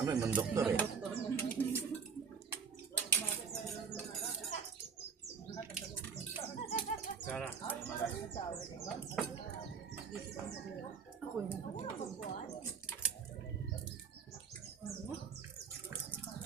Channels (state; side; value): quieter; left; 6.0 dB